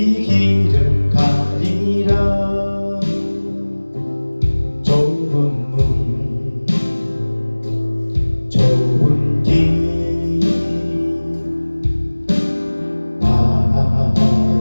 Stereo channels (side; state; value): both; inverted; correlation -1.00